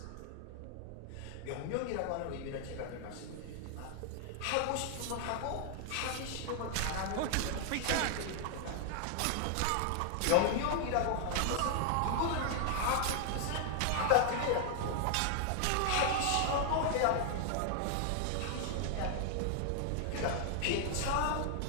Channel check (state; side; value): different; both; correlation 0.00